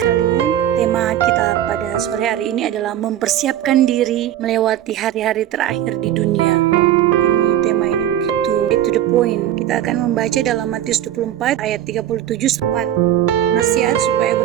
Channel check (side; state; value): left; quieter; 11.6 dB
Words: Tema kita pada sore hari ini adalah mempersiapkan diri melewati hari-hari terakhir di dunia. Tema ini begitu to the point. Kita akan membaca dalam Matius 24 ayat 37 sempat nasihat supaya